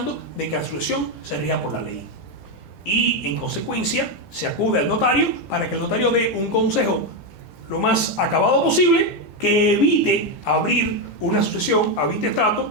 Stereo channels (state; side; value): normal; both; correlation 0.07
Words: de que la sucesión se rija por la ley. Y en consecuencia se acude al notario para que el notario dé un consejo lo más acabado posible que evite abrir una sucesión a